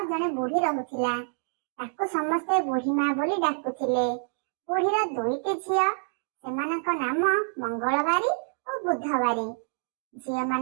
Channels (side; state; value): left; silent; digital silence